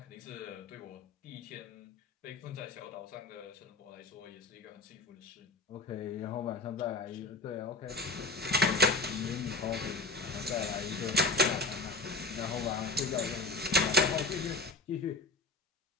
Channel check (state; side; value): quieter; right; 3.1 dB